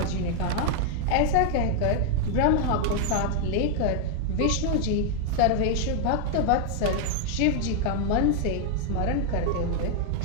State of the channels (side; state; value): both; different; correlation 0.00